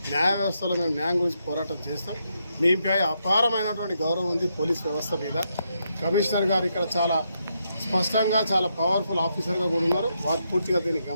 న్యాయ వ్యవస్థలో మేము న్యాయం గురించి పోరాటం చేస్తాం. మీపై అపారమైనటువంటి గౌరవం ఉంది పోలీస్ వ్యవస్థ మీద. కమిషనర్ గారు ఇక్కడ చాలా స్పష్టంగా, చాలా పవర్ఫుల్ ఆఫీసర్గా కూడా ఉన్నారు. వారు పూర్తిగా దీన్ని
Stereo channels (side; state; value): both; inverted; correlation -0.80